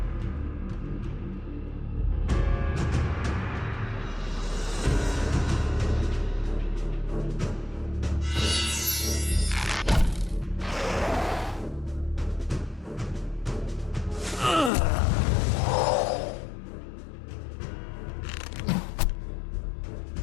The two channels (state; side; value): drops out; right; at 14.7 s